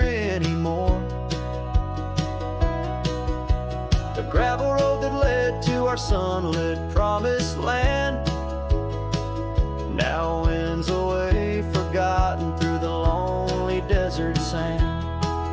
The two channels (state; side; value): identical; both; correlation 1.00